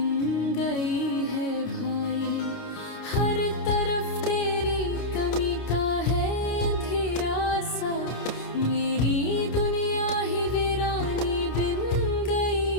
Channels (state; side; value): late; right; 29 ms